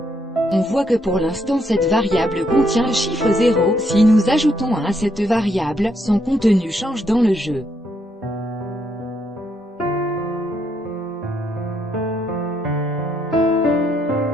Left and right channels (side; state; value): both; normal; correlation 0.75